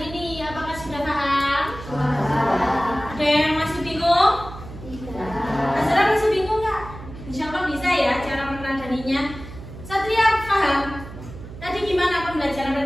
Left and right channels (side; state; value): right; noise; hum, 13 dB below the sound